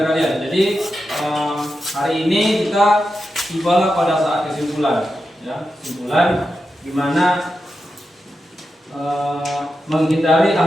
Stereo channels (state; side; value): normal; both; correlation 0.89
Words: kalian. Jadi hari ini kita tibalah pada saat kesimpulan ya, kesimpulan di mana menghindari